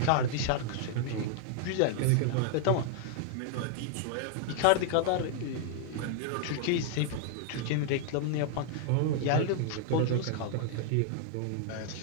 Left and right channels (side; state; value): both; different; correlation -0.01